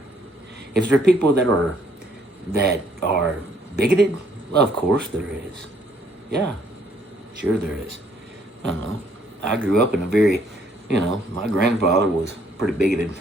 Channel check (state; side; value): normal; both; correlation 0.66